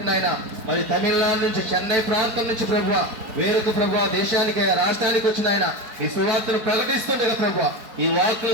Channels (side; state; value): left; late; 4.4 ms